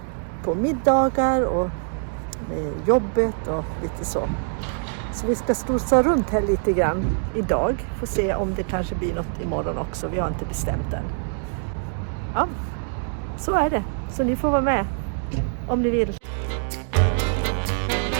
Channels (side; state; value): left; silent; 62 dB below the other